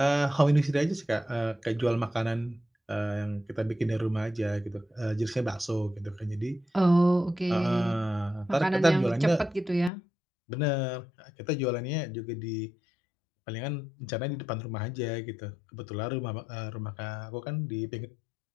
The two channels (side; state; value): right; drops out; at 9.9 s